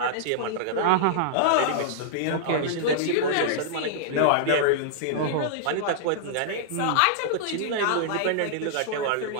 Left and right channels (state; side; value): different; both; correlation -0.02